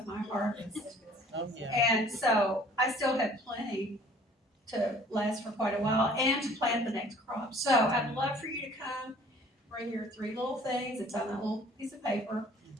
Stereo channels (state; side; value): normal; both; correlation 0.53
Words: my harvest. Oh, yeah. And so I still have plenty to last for quite a while and to plant the next crop. So I'd love for you to come, bring your 3 little things. It's on that little piece of paper.